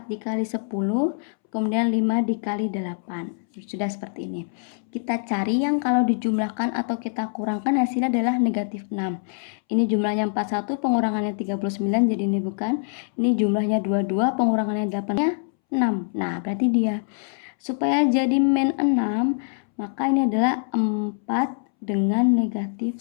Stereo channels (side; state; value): right; silent; 63 dB below the other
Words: dikali 10, kemudian 5 dikali 8. Sudah seperti ini. Kita cari yang kalau dijumlahkan atau kita kurangkan hasilnya adalah negatif 6. Ini jumlahnya 41, pengurangannya 39, jadi ini bukan. Ini jumlahnya 22, pengurangannya 8-nya 6. Nah, berarti dia. Supaya jadi min 6, maka ini adalah 4 dengan negatif